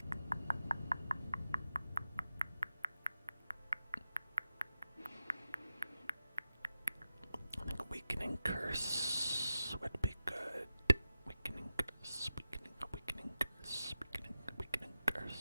I think weakening curse would be good. Weakening curse, weakening curse, weakening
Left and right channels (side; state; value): both; inverted; correlation -0.91